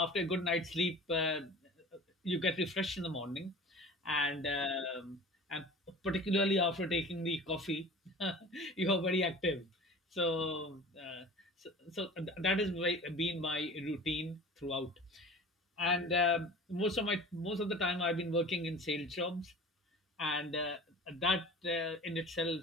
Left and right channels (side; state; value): both; normal; correlation 0.40